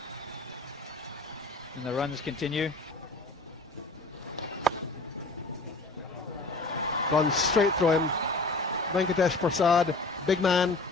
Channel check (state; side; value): quieter; right; 3.2 dB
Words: And the runs continue. Gone straight through him. Venkatesh Prasad, big man,